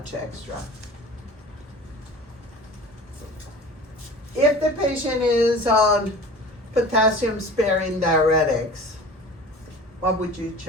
extra. If the patient is on potassium sparing diuretics, what would you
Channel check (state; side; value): normal; both; correlation 0.40